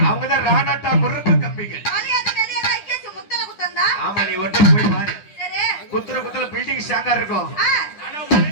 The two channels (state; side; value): late; right; 9.9 ms